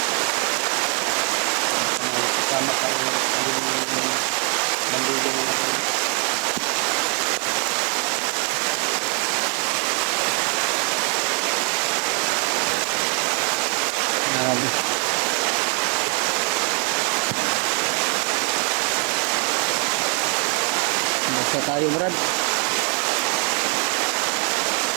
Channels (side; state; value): left; quieter; 39.4 dB